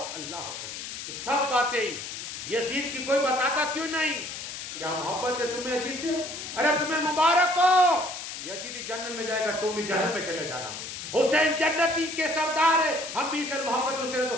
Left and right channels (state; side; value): noise; left; hiss, 8 dB below the sound